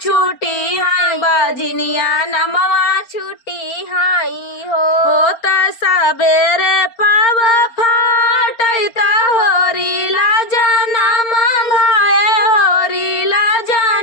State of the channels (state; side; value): late; right; 4.3 ms